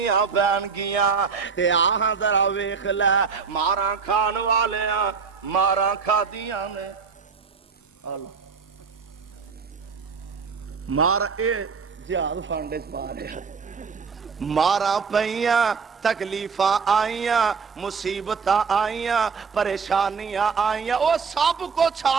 پین گیاں۔ تے آہاں ذرا ویکھ لے مارا کھان والیاں مارا کھادیاں نے، مارا اے جہاد فنڈ چ پا رہا، مارا پئیاں، تکلیفاں آئیاں، مصیبتاں آئیاں، پریشانیاں آئیاں، وہ سب کچھ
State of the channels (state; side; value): quieter; left; 5.6 dB